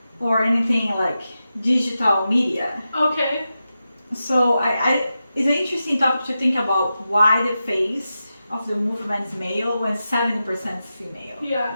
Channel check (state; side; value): inverted; both; correlation -0.91